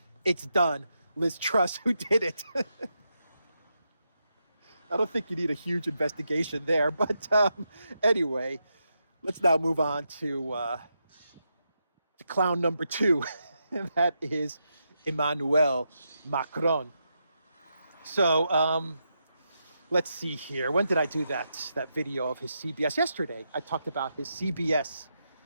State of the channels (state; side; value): inverted; both; correlation -0.84